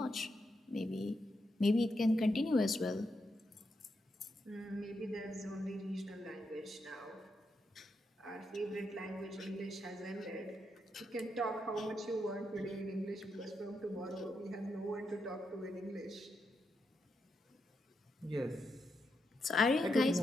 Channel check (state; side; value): normal; both; correlation 0.83